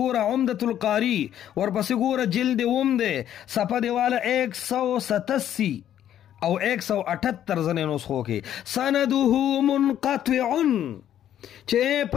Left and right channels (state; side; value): quieter; right; 10.9 dB